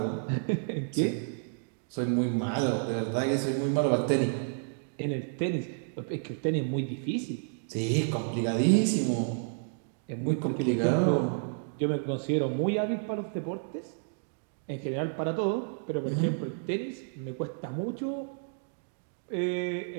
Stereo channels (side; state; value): left; silent; digital silence